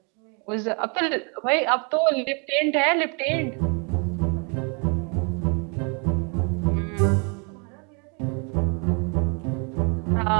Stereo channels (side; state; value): left; quieter; 35.8 dB